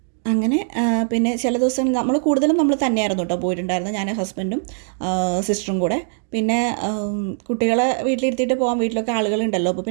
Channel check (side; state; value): left; silent; digital silence